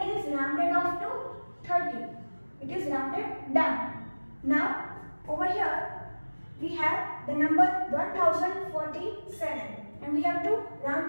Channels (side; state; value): both; inverted; correlation -1.00